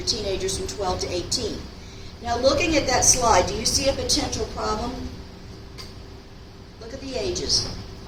teenagers from 12 to 18. Now, looking at that slide, do you see a potential problem? Look at the ages.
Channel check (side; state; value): both; identical; correlation 1.00